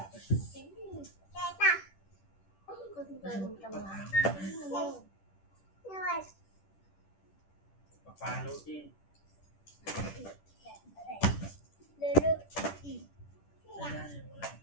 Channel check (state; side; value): late; right; 10 ms